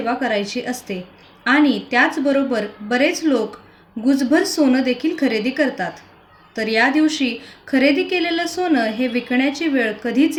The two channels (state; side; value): identical; both; correlation 1.00